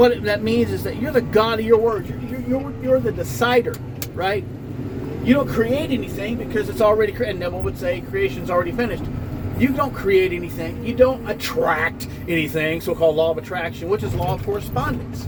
that means is that you're the God of your word. You're the decider, right? You don't create anything because it's already created. Neville would say creation's already finished. You don't create anything. You don't attract anything, so-called law of attraction, which is law of correspondence.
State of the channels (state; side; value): identical; both; correlation 1.00